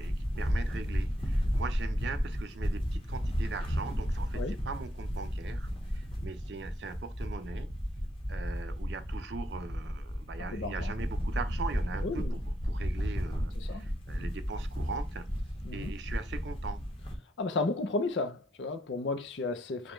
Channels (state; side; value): normal; both; correlation 0.76